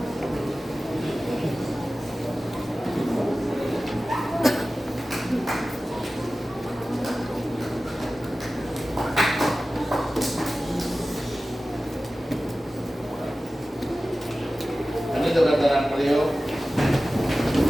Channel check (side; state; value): both; normal; correlation 0.96